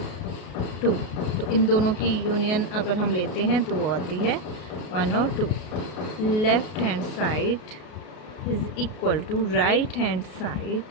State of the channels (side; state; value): right; late; 33 ms